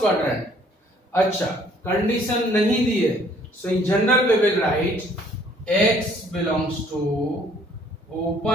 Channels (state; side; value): normal; both; correlation 0.60